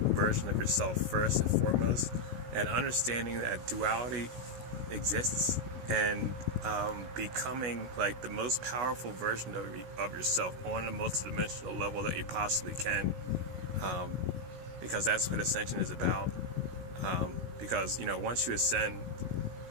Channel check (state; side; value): late; left; 16 ms